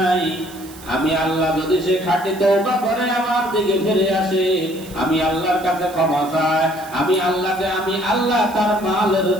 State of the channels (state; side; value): noise; right; hiss, 19 dB below the sound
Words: আমি আল্লাহ যদি সে খাঁটি তওবা করে আমার দিকে ফিরে আসে, আমি আল্লাহর কাছে ক্ষমা চাই, আমি আল্লাহ তার মালের